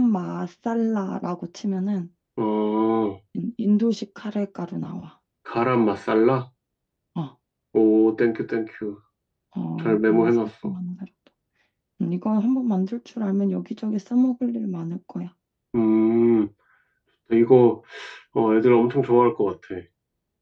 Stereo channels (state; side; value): identical; both; correlation 1.00